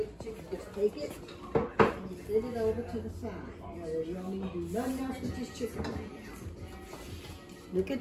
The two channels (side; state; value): both; identical; correlation 1.00